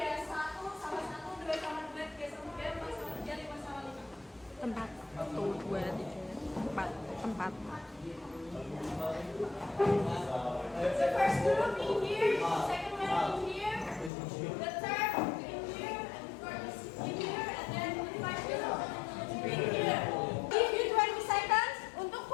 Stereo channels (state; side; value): drops out; right; at 14.1 s